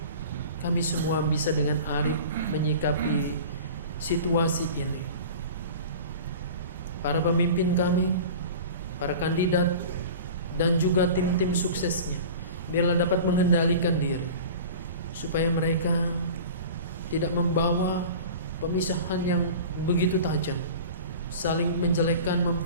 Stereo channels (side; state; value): both; inverted; correlation -0.37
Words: kami semua bisa dengan arif menyikapi situasi ini. Para pemimpin kami, para kandidat, dan juga tim-tim suksesnya, biarlah dapat mengendalikan diri, supaya mereka tidak membawa pemisahan yang begitu tajam, saling menjelekkan,